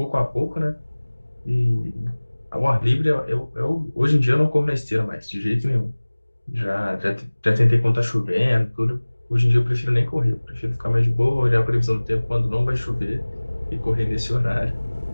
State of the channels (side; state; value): both; inverted; correlation -1.00